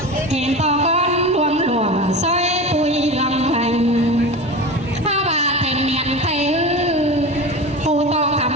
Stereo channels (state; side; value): normal; both; correlation 0.29